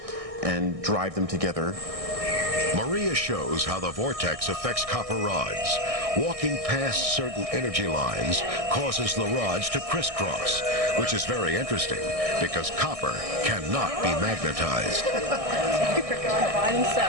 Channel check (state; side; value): late; left; 1.6 ms